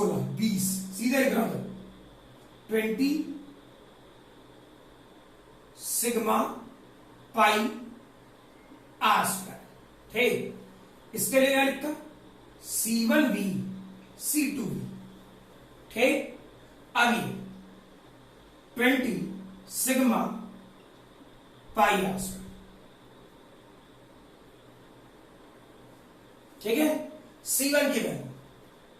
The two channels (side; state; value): both; identical; correlation 1.00